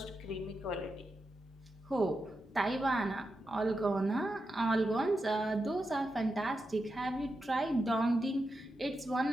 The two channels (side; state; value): both; normal; correlation 0.88